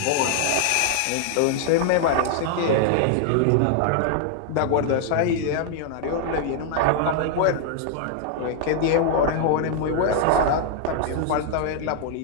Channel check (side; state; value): both; different; correlation 0.00